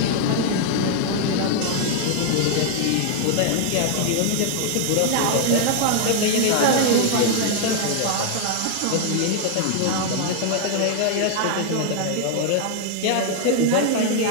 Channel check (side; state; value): both; different; correlation 0.00